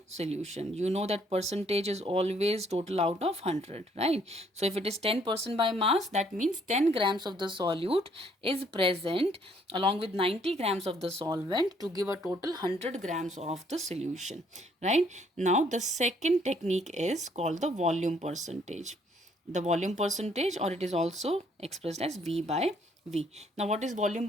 solution. You know that percentage is always total out of 100, right? So if it is 10% by mass, that means 10 grams of the solute is present along with 90 grams of the solvent to give a total 100 grams of the solution, right? Now the second technique is called the volume percentage. the volume percentage, or it is also expressed as V by V. Now what is volume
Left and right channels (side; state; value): both; normal; correlation 0.66